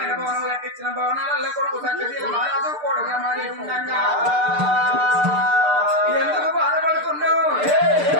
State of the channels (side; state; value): left; late; 6.7 ms